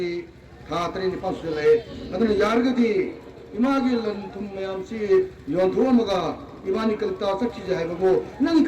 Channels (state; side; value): identical; both; correlation 1.00